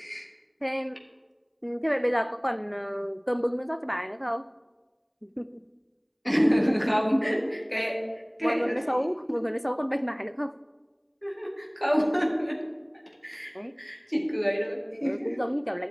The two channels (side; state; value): both; identical; correlation 1.00